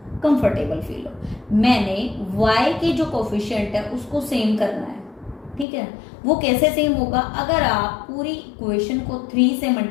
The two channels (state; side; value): drops out; right; at 5.7 s